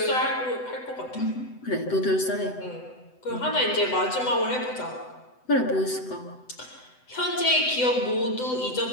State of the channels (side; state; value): right; late; 7.9 ms